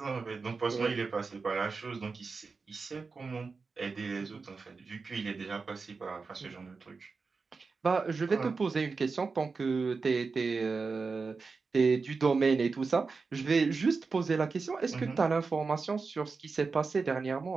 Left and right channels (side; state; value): left; quieter; 4.5 dB